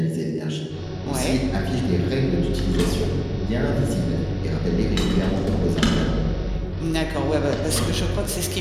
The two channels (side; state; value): both; identical; correlation 1.00